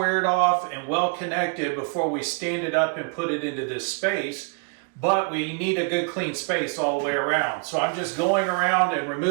off and well connected before we stand it up and put it into this space. But we need a good clean space all the way around. So I'm just going around and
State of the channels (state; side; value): quieter; left; 36.3 dB